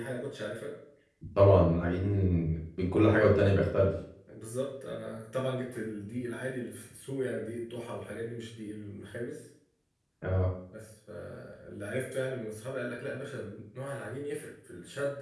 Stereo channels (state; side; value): identical; both; correlation 1.00